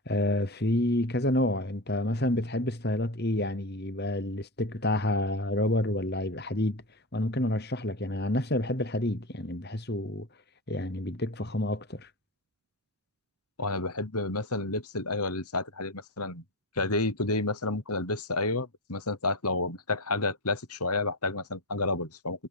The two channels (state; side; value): normal; both; correlation 0.20